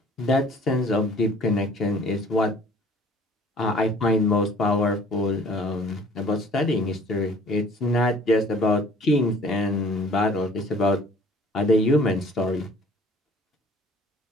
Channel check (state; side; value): normal; both; correlation 0.53